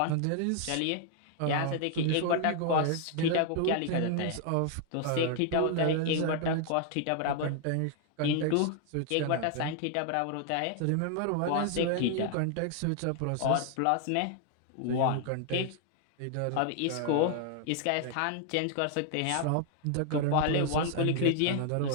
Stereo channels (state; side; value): different; both; correlation 0.00